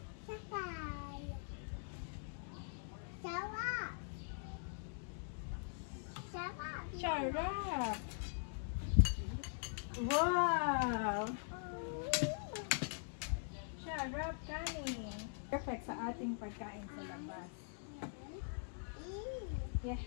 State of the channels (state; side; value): silent; right; digital silence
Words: Sarap! Wow! Sarap kanin! Perfect sa ating pagkain sa labas.